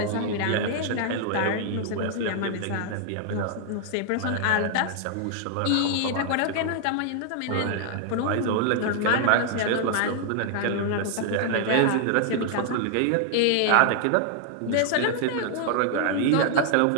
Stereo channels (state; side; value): different; both; correlation -0.01